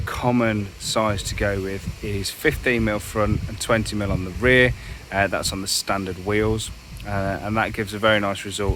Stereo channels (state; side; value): identical; both; correlation 1.00